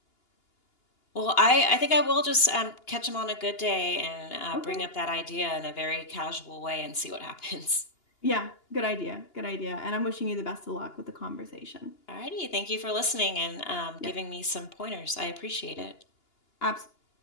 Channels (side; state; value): right; late; 2.8 ms